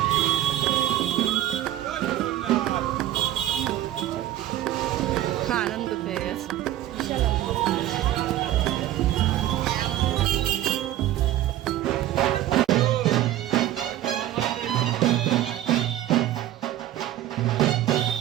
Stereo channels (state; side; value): quieter; left; 13.3 dB